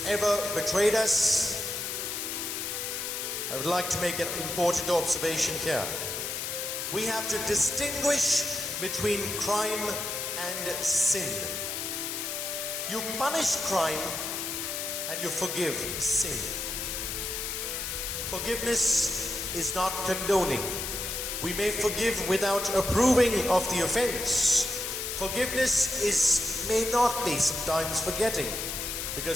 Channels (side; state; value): left; noise; hiss, 3 dB below the sound